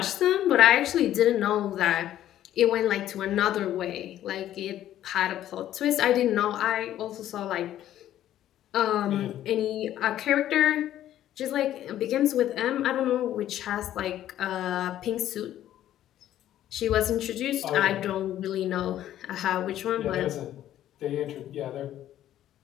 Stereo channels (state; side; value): quieter; right; 12.2 dB